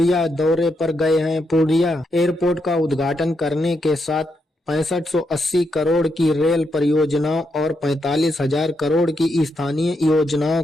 दौरे पर गए हैं। पूर्णिया एयरपोर्ट का उद्घाटन करने के साथ 6580 करोड़ की रेल परियोजनाओं और 45,000 करोड़ की स्थानीय योजनाओं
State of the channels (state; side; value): normal; both; correlation 0.81